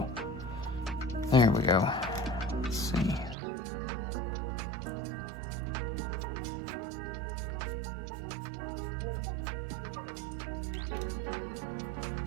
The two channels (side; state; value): left; drops out; at 3.4 s